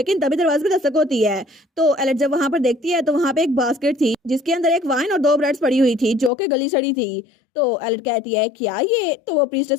तभी दरवाजे पे दस्तक होती है। तो एलेट जब वहां पर देखती है तो वहां पे एक बास्केट थी जिसके अंदर एक वाइन और 2 ब्रेड्स पड़ी हुई थी जो कि गली सड़ी थी। तो एलेट कहती है क्या ये, तो वो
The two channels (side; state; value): right; drops out; at 6.3 s